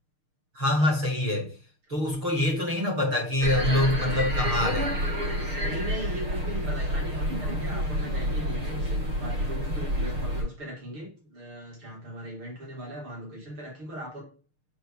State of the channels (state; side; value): late; left; 6.6 ms